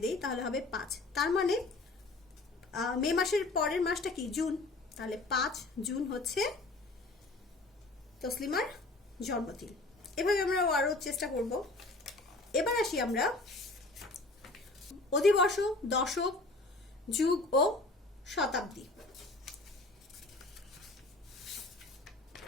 দেই তাহলে হবে 5। তার মানে মে মাসের পরের মাসটা কি? জুন। তাহলে 5 জুন হচ্ছে তসলিমার জন্মদিন। এভাবে আমরা আরো চেষ্টা করব। এবার আসি আমরা অধিবর্ষ, দশক, যুগ ও শতাব্দী।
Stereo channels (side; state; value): right; quieter; 3.1 dB